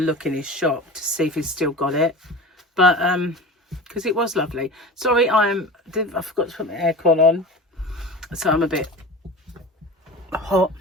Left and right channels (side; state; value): both; normal; correlation 0.33